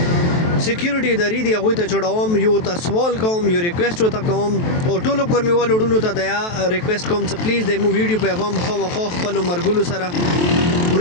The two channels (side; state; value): right; late; 23 ms